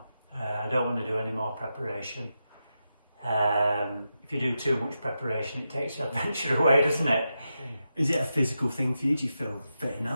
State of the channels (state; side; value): inverted; both; correlation -0.88